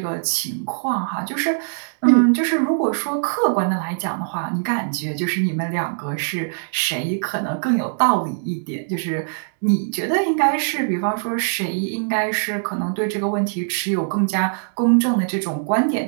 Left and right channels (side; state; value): left; silent; digital silence